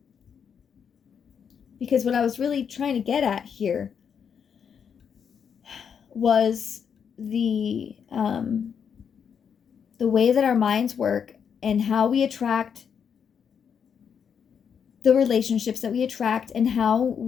because what I was really trying to get at here was the way that our minds work and how we attract the relationships that we attract, and how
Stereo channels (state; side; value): quieter; right; 7.3 dB